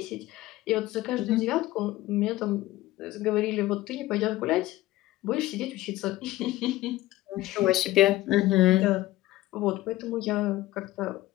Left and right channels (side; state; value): right; quieter; 16.8 dB